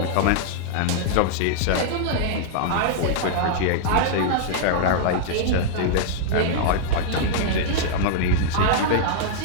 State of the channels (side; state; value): both; different; correlation -0.02